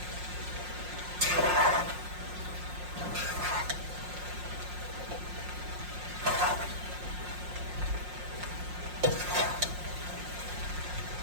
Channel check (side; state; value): left; late; 5.6 ms